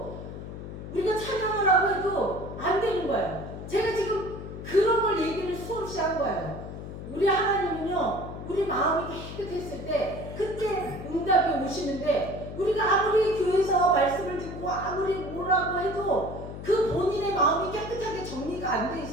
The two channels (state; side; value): noise; left; hum, 10 dB below the sound